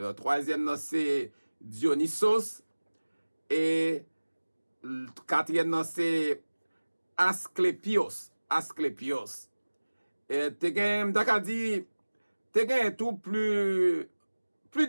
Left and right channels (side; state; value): both; inverted; correlation -1.00